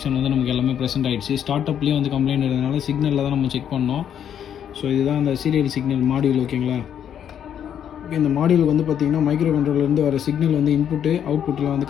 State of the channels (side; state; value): right; quieter; 9.2 dB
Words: வந்து நமக்கு எல்லாமே ப்ரெசென்ட் ஆகிடுச்சு. ஸ்டார்ட் அப்லேயே வந்து கம்ப்ளைண்ட் இருந்ததுனால சிக்னலில் தான் நம்ம செக் பண்ணோம். ஸோ இதுதான் அந்த சீரியல் சிக்னல் மாடியூல். ஓகேங்களா, இந்த மாடியூல் வந்து பார்த்திங்கன்னா மைக்ரோ கண்ட்ரோலர்லேருந்து வர சிக்னல் வந்து இன்புட்டு அவுட்புட்டில் வந்து